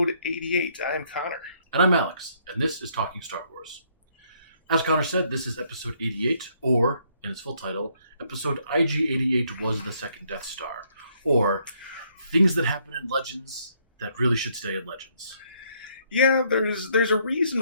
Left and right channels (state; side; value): inverted; both; correlation -0.69